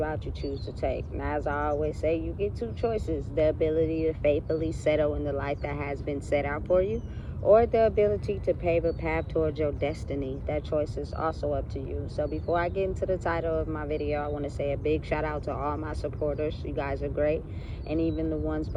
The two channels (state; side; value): identical; both; correlation 1.00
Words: you choose to take. Now, as I always say, you get two choices: the ability to faithfully settle in the life that has been set out for you, or the ability to pave a path towards your destiny. That choice is also up to you. So before I get into the title of my video, I want to say a big shout out to all my supporters. You guys are great. And even the ones